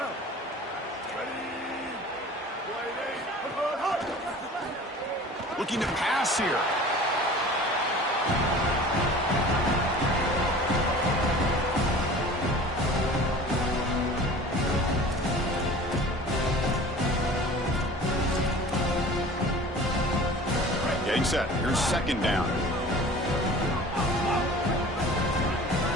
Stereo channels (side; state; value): both; normal; correlation 0.42